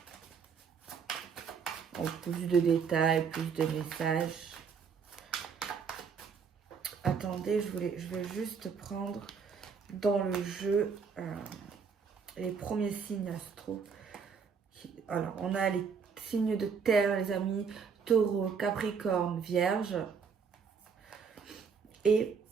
En plus de détails, plus de messages. Attendez, je vais juste prendre dans le jeu les premiers signes astro. Alors, on a les signes de terre, les amis, Taureau, Capricorne, Vierge. Et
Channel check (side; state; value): left; quieter; 6.1 dB